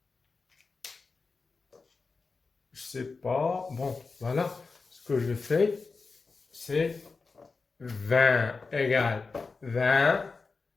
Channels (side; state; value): right; quieter; 4.3 dB